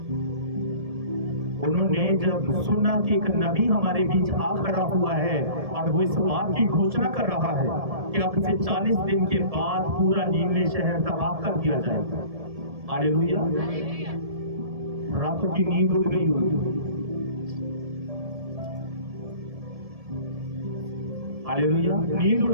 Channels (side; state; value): left; late; 1.7 ms